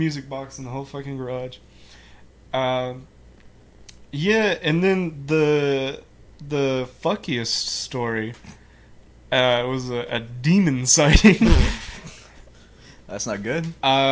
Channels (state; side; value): identical; both; correlation 1.00